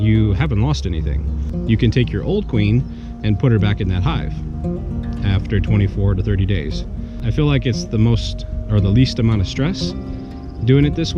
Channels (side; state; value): both; identical; correlation 1.00